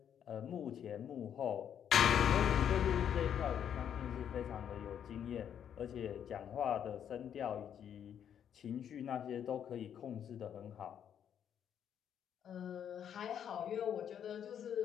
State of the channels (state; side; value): quieter; right; 9.0 dB